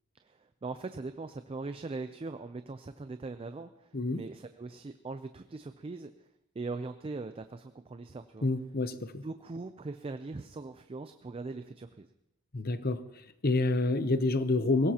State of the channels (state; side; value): normal; both; correlation 0.61